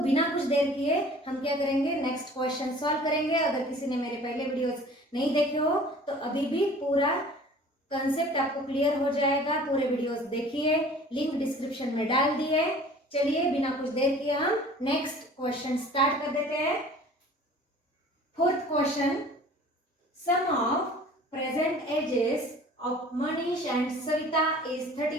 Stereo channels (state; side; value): normal; both; correlation 0.47